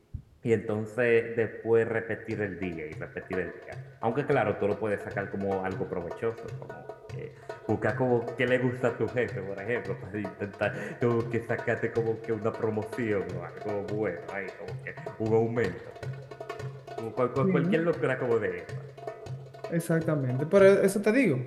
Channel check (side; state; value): both; identical; correlation 1.00